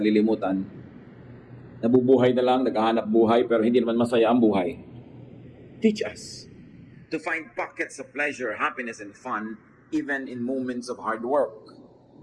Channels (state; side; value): identical; both; correlation 1.00